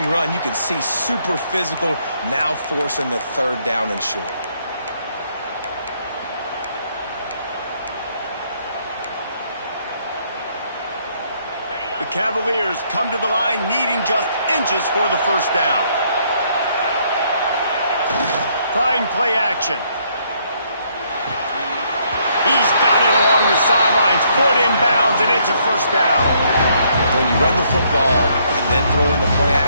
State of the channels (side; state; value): both; inverted; correlation -0.69